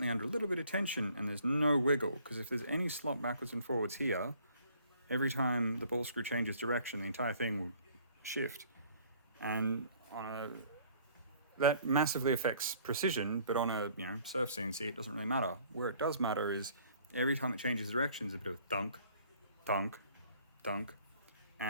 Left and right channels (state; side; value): inverted; both; correlation -0.58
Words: under a little bit of tension and there's no wiggle, because if there's any slop backwards and forwards here, every time the ball screw changes direction the entire thing will shift. And that massively affects precision, but on a surf CNC it doesn't really matter. Where it does matter is every time it changes direction there's a bit of thunk, thunk, thunk,